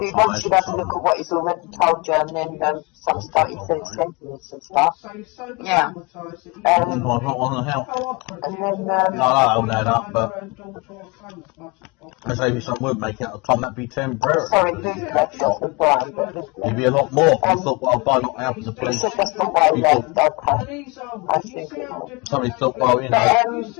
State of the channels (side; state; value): right; quieter; 27.9 dB